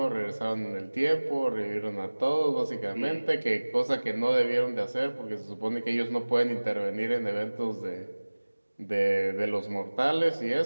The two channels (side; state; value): both; inverted; correlation -1.00